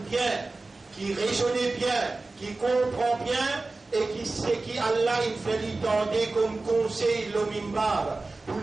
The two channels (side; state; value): left; quieter; 3.4 dB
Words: bien, qui raisonne bien, qui comprend bien et qui sait qui Allah il fait lui tendre comme conseil le mimbar. Pour